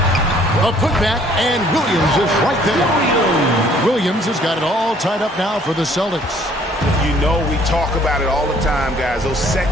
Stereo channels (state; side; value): normal; both; correlation 0.59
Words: A putback, and Williams is right there. Williams has got it all tied up now for the Celtics. You know we talk about it all the time, guys. Those